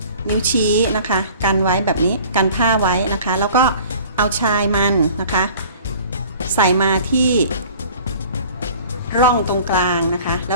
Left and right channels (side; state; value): both; inverted; correlation -0.47